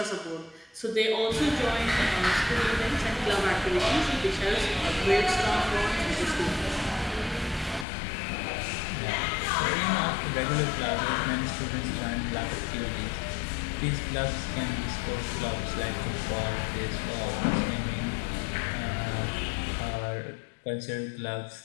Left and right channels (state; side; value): drops out; right; at 7.9 s